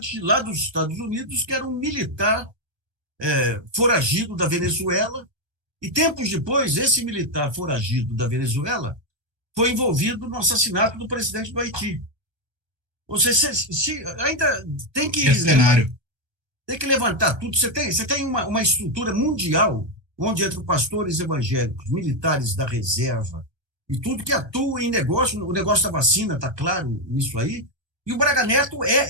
lá dos Estados Unidos, que era um militar foragido da Venezuela. E tempos depois, esse militar foragido da Venezuela foi envolvido no assassinato do presidente do Haiti. Ou seja, ainda tem que... cenário. Tem que levantar tudo. Você tem uma estrutura mundial onde entre pastores evangélicos, militares da reserva e tudo que atua em negócio, o negócio da vacina, está claro nisso aí, e o Braga Neto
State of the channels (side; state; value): left; late; 1.3 ms